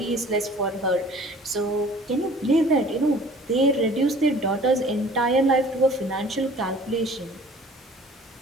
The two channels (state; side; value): normal; both; correlation 0.49